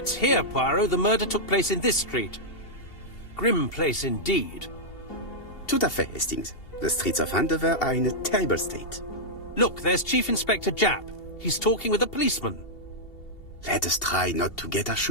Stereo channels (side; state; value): right; late; 2.7 ms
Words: here, Poirot. The murder took place in this street. Grim place indeed. Tout à fait, Hastings. The streets of Andover are in a terrible state. Look, there's Chief Inspector Japp. He's talking with a policeman. Let us try not to get our